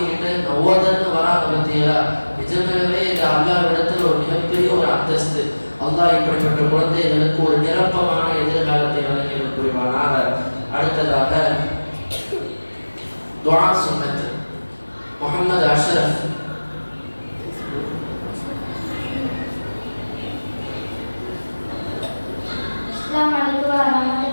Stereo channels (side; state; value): both; inverted; correlation -1.00